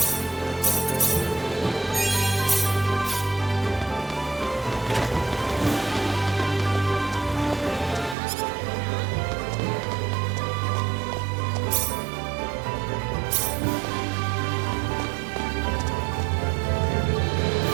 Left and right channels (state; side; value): drops out; left; at 8.2 s